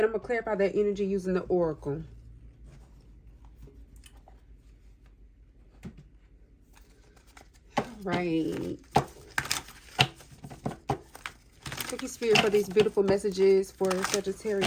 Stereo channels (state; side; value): identical; both; correlation 1.00